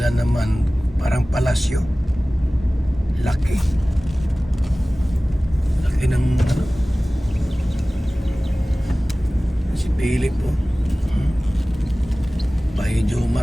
naman. Parang palasyo. Laki. Laki ng ano. Si Philip oh. Bahay ni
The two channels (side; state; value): both; normal; correlation 0.98